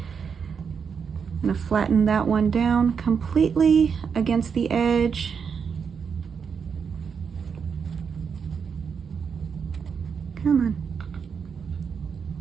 I'm gonna flatten that one down completely against the edge. Come on.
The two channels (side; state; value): left; quieter; 6.4 dB